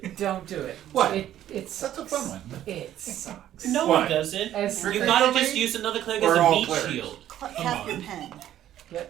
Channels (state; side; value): quieter; left; 12.0 dB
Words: Don't do it. What? It's That's a fun one. It sucks. no What? one doesn't. As You Trickery gotta domain? just use another cleric Or as a all meat clerics? shield. Captain Pen.